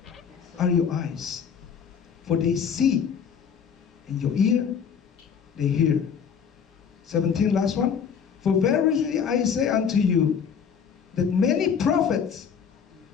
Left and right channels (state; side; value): quieter; right; 7.0 dB